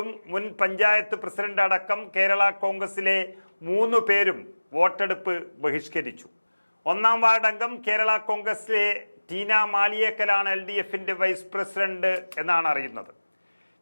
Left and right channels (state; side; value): inverted; both; correlation -1.00